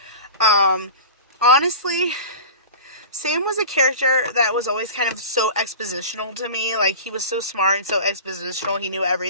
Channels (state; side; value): inverted; both; correlation -0.34